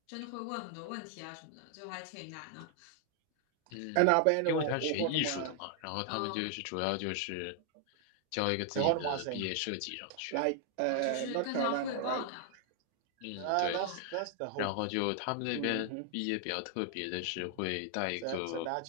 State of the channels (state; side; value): different; both; correlation 0.00